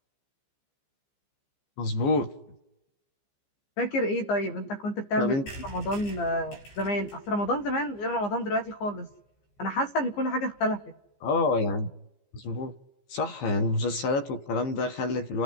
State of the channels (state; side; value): late; right; 15 ms